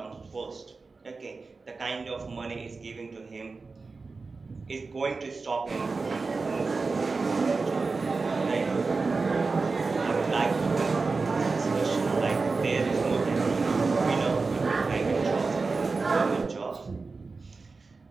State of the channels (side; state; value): left; quieter; 4.1 dB